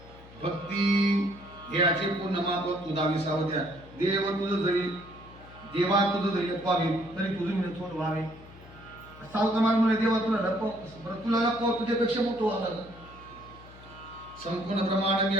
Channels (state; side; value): noise; left; hum, 20 dB below the sound